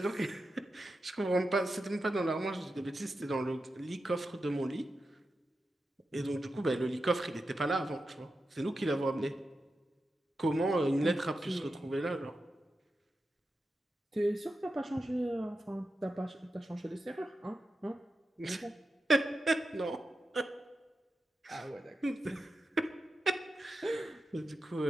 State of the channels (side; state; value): both; normal; correlation 0.90